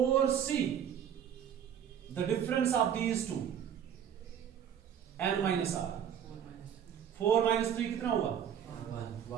the difference of these two n minus r. 4 minus 3 कितना हुआ,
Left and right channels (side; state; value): left; quieter; 9.0 dB